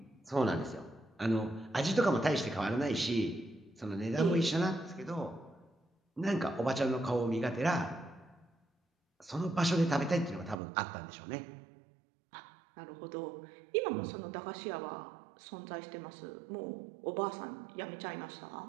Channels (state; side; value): drops out; left; at 10.6 s